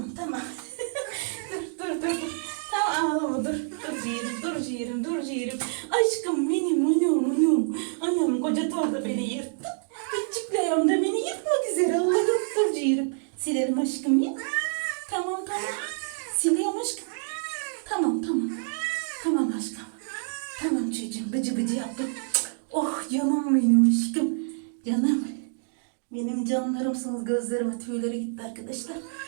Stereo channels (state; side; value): silent; left; digital silence